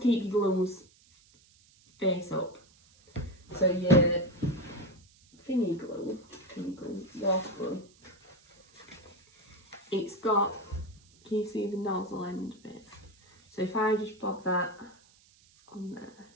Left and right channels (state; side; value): noise; right; hiss, 29 dB below the sound